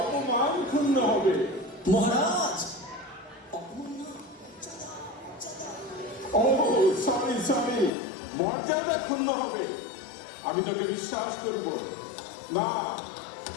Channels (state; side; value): drops out; right; at 7.9 s